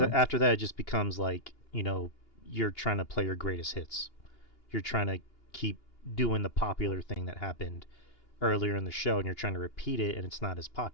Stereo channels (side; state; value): right; late; 2.8 ms